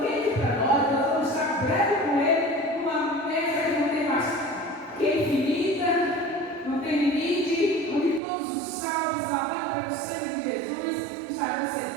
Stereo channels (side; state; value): left; drops out; at 8.2 s